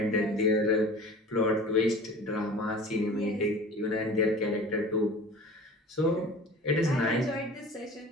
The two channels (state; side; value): normal; both; correlation 0.41